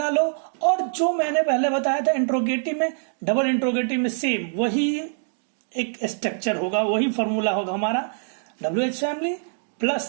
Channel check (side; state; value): left; silent; digital silence